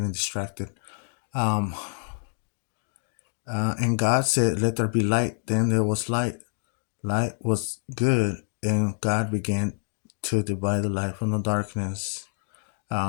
distracted. Um, and God said, "Let there be light." Then there was light. Light was good, and God began to divide the light from the darkness.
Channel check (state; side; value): silent; right; digital silence